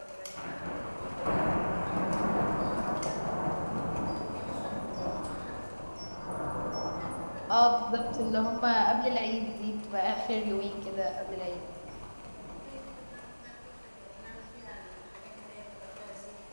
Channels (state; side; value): inverted; both; correlation -1.00